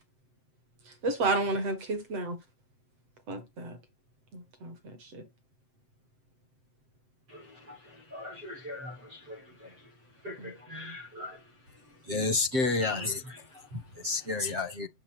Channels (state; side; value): late; left; 7.7 ms